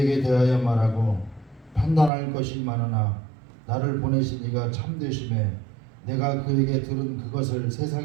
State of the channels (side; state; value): left; drops out; at 2.1 s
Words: 대하여 말하고 판단할 것이 많으나 나를 보내신 이가 참되심에 내가 그에게 들은 그것을